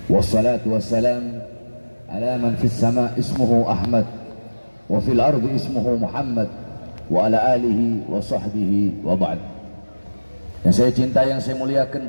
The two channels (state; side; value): inverted; both; correlation -1.00